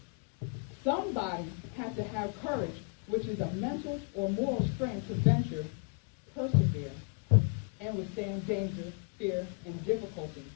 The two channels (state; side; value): quieter; right; 36.1 dB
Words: Somebody had to have courage, which is a mental or moral strength to venture, persevere, and withstand danger, fear, and difficulty,